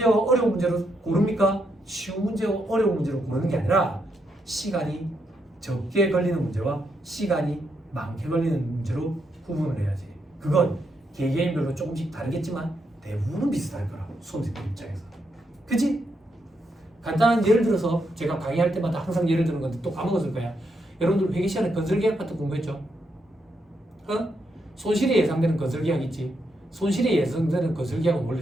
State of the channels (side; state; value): both; normal; correlation 0.80